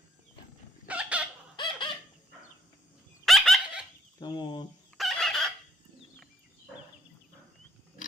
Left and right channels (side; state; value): both; normal; correlation 0.72